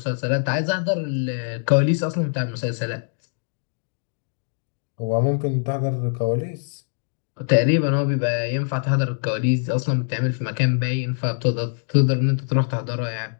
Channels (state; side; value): silent; right; digital silence